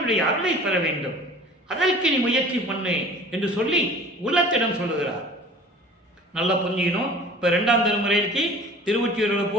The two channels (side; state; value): both; normal; correlation 0.44